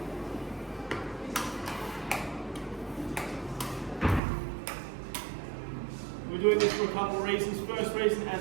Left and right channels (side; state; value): left; drops out; at 4.2 s